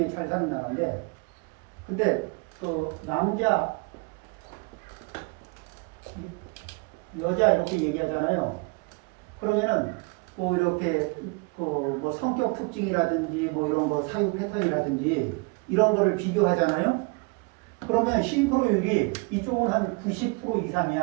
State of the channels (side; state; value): left; quieter; 29.5 dB